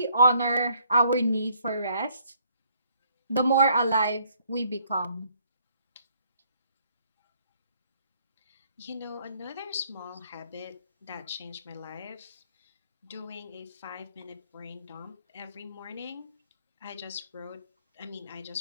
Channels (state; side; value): inverted; both; correlation -0.65